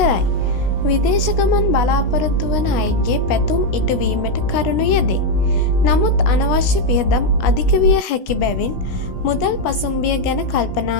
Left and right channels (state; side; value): late; right; 16 ms